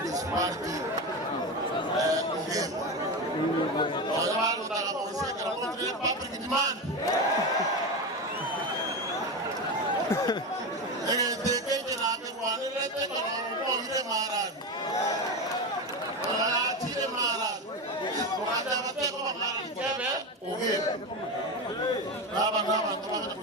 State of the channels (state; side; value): normal; both; correlation 0.19